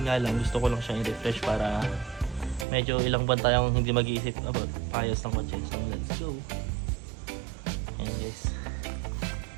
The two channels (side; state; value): left; drops out; at 2.7 s